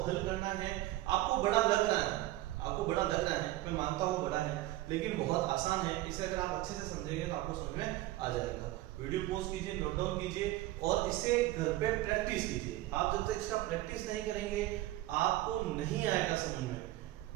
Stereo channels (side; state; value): left; quieter; 16.5 dB